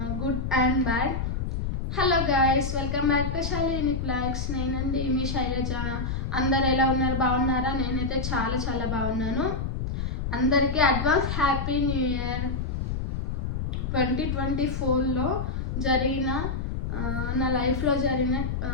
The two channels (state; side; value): noise; left; rumble, 2 dB below the sound